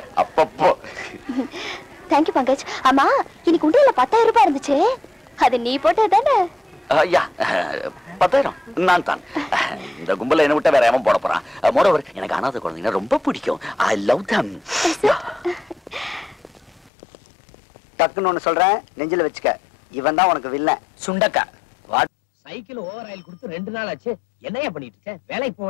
அப்பப்போ. தேங்க்யூ பங்கஜ். ஆமா, இன்னைக்கு உண்டியல்ல 10,000 ரூபாய் இருந்துச்சு. அது நீ போட்டது தானே? ஐயா 10,000 நான் தான். இந்த கும்பல என்ன விட்டா வேற எவன் போட போறான்? மோரோவர் எனக்கு அநாத குழந்தைங்க ரொம்ப பிடிக்கும். ஐ லவ் தம். டக்குன்னு ஒண்ணு சொல்றேன், நெஞ்சில வச்சுக்க. இவன் தான் உனக்கு வில்ல. சுண்டக்கா சைக்கிள் ஓவர் ஆயில் கொடுத்து 2 நாள் ஆச்சு. என்னையா பண்ணிட்டு இருக்க? வேலைக்கு போக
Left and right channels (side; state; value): right; drops out; at 16.9 s